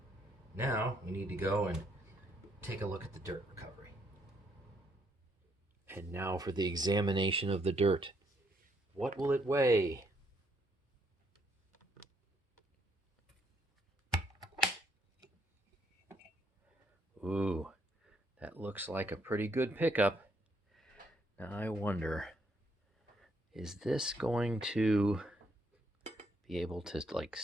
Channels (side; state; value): both; normal; correlation 0.72